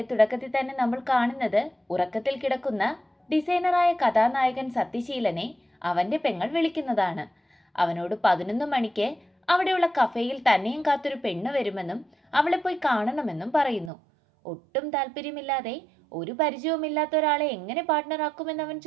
തുടക്കത്തിൽ തന്നെ നമ്മൾ കാണുന്നത് ഉറക്കത്തിൽ കിടക്കുന്ന ഡിസൈനറായ കഥാനായകൻ സത്യശീലനെ അവന്റെ പെങ്ങൾ വിളിക്കുന്നതാണ്. അവനോട് 11 മണിക്ക് അവിടെയുള്ള കഫേയിൽ തന്നെയും കാത്തൊരു പെണ്ണ് വരുമെന്നും അവളെ പോയി കാണണമെന്നും പറയുന്നു. ഒട്ടും താല്പര്യമില്ലാതെ ഒരു പരിചയവുമില്ലാത്ത ഒരാളെ എങ്ങനെ പാർട്ട്ണറാക്കുമെന്ന് അവൻ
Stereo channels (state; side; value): drops out; left; at 13.9 s